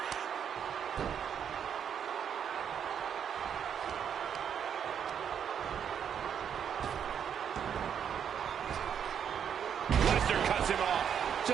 Lesnar cuts him off.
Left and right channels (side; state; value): left; quieter; 8.2 dB